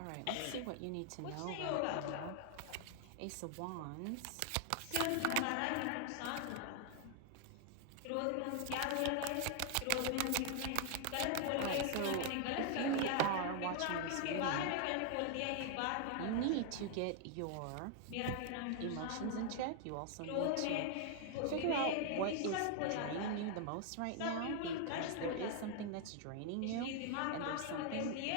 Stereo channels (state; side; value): different; both; correlation 0.00